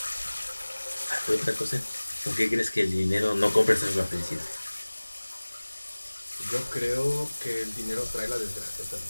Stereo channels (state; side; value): inverted; both; correlation -1.00